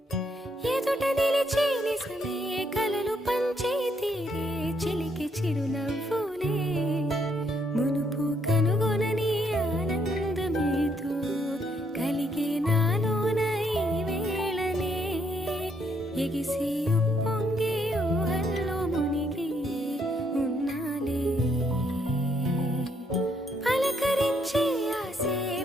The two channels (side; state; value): both; normal; correlation 0.73